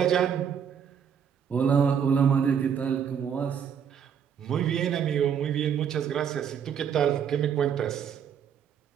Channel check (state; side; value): quieter; left; 7.9 dB